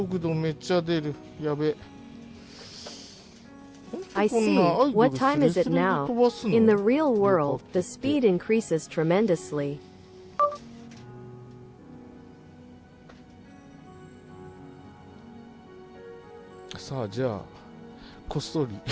度めっちゃ出る。やべ。 I see. What time is it now? In the real world, the speed increases tremendously. さあじゃあこっそり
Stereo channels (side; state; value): both; identical; correlation 1.00